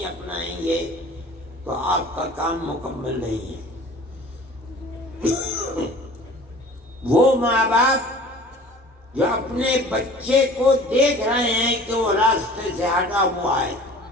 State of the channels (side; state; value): both; normal; correlation 0.45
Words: اپنائیں گے تو آپ کا کام مکمل نہیں ہے۔ وہ ماں باپ جو اپنے بچے کو دیکھ رہے ہیں کہ وہ راستے سے ہٹا ہوا ہے،